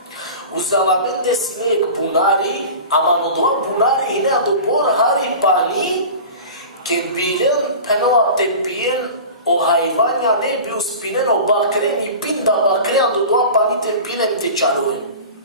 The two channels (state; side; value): inverted; both; correlation -0.35